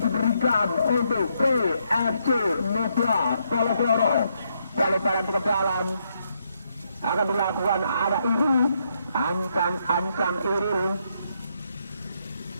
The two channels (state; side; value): inverted; both; correlation -0.77